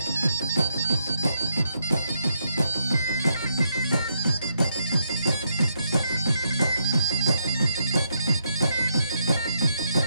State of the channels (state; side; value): inverted; both; correlation -0.78